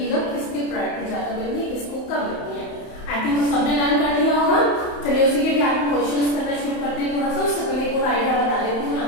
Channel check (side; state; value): right; late; 31 ms